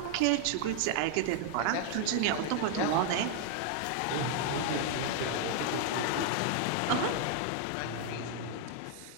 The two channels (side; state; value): both; different; correlation 0.00